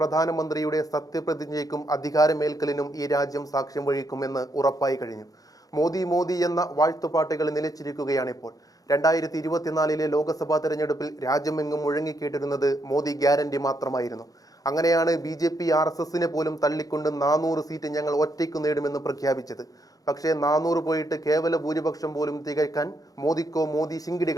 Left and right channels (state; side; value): late; right; 0.17 ms